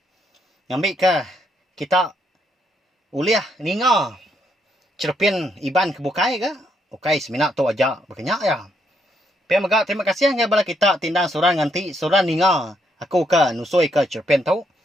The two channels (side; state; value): both; normal; correlation 0.75